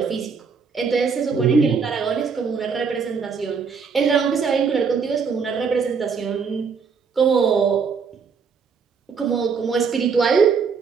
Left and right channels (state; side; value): quieter; left; 5.6 dB